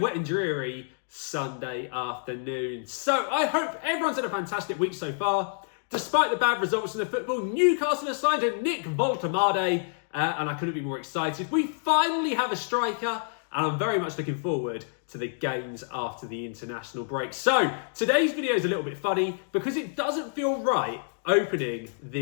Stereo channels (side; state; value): right; silent; digital silence